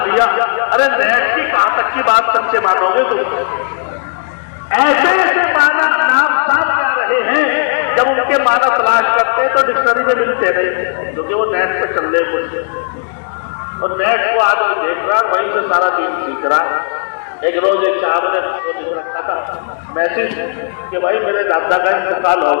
دیا. ارے نیٹ کی کہاں تک کی بات سچے مانو گے تم؟ ایسے ایسے معنی نام سامنے آ رہے ہیں، جب ان کے معنی تلاش کرتے ہیں تو ڈکشنری میں ملتے نہیں، کیونکہ وہ نیٹ پہ چل رہے کچھ. اور نیٹ کو آدمی دیکھ رہا ہے، وہیں سے سارا دن سیکھ رہا ہے. ایک روز ایک صاحب نے رکھا تھا میسج کہ بھائی میرے دادا کا انتقال ہو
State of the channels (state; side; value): silent; right; digital silence